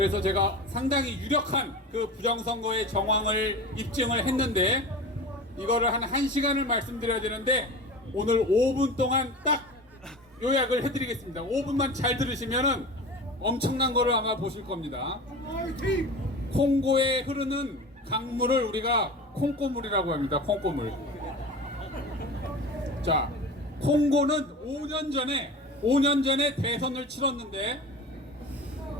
제가 상당히 유력한 그 부정선거의 정황을 입증을 했는데, 이거를 한 1시간을 말씀드려야 되는데 오늘 5분 동안 딱 요약을 해드리겠습니다. 5분만 잘 들으시면은 엄청난 거를 아마 보실 겁니다. 콩고에 흐르는 강물을 우리가 콩고물이라고 합니다. 콩고물. 자, 콩고는 5년 전에 대선을 치렀는데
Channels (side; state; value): both; normal; correlation 0.33